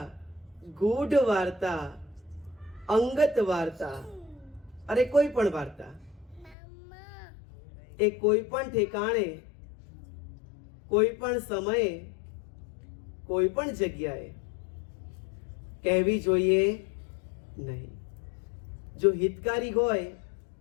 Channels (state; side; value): drops out; right; at 6.6 s